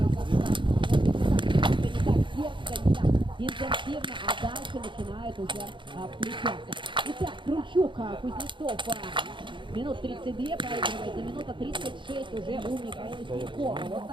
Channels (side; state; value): left; late; 0.23 ms